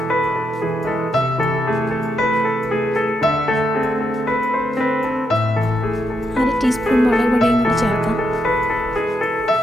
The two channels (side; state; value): both; normal; correlation 0.82